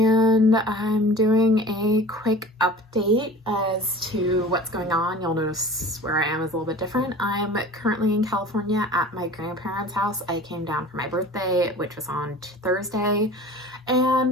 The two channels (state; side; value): normal; both; correlation 0.41